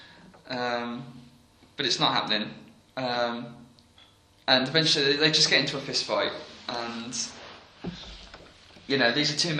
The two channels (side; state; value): both; identical; correlation 1.00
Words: But it's not happening. And eventually they just get into a fist fight, and these are two